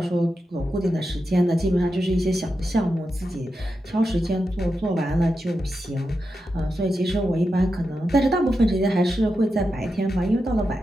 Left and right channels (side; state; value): both; normal; correlation 0.88